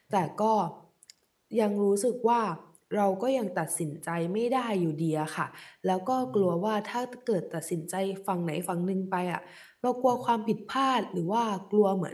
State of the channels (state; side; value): identical; both; correlation 1.00